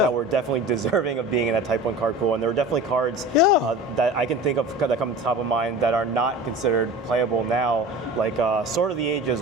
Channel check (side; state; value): both; normal; correlation 0.37